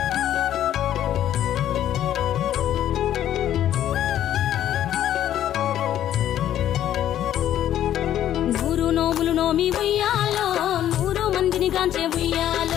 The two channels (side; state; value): right; quieter; 11.5 dB